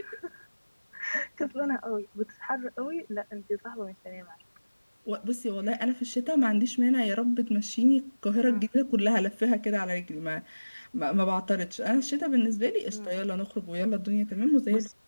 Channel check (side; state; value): both; inverted; correlation -1.00